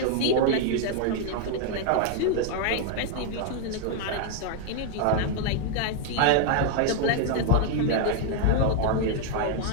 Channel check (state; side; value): different; both; correlation 0.00